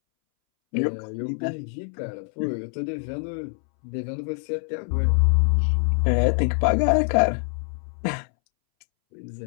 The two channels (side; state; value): right; silent; 62 dB below the other